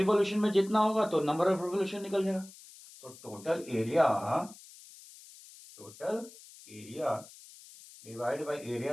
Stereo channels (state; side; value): noise; left; hiss, 20 dB below the sound